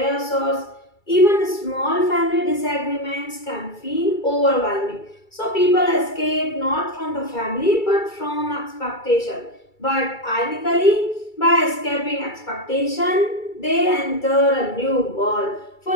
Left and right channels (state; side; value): late; right; 2.3 ms